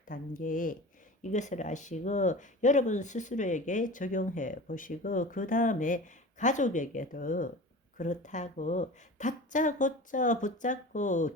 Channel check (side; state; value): both; normal; correlation 0.35